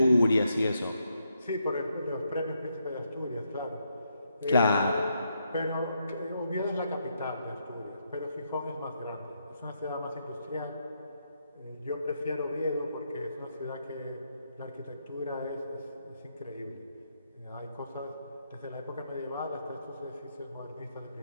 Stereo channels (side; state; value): both; inverted; correlation -0.79